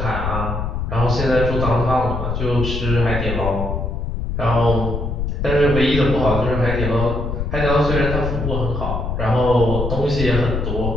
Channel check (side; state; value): left; noise; rumble, 3 dB below the sound